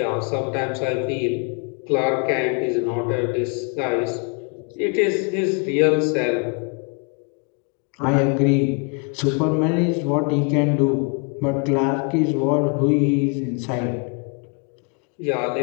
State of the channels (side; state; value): right; quieter; 36.9 dB